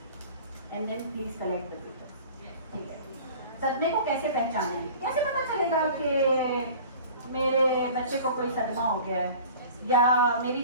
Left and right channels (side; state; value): both; inverted; correlation -0.43